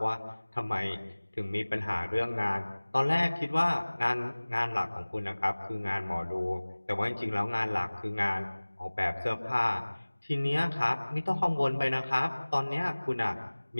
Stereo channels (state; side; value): inverted; both; correlation -1.00